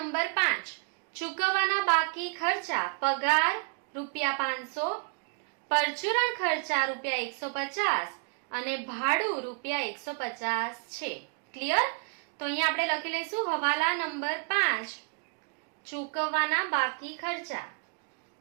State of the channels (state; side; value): quieter; left; 35.4 dB